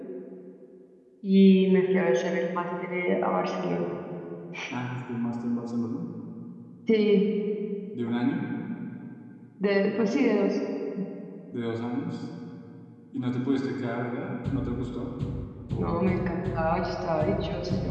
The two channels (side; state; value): both; identical; correlation 1.00